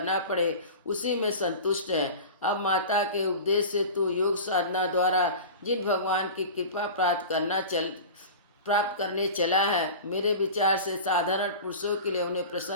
पड़े, उसी में संतुष्ट है। अब माता के उपदेश से तू योग साधना द्वारा जिन भगवान की कृपा प्राप्त करने चला है, मेरे विचार से साधारण पुरुषों के लिए उन्हें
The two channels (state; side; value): inverted; both; correlation -0.33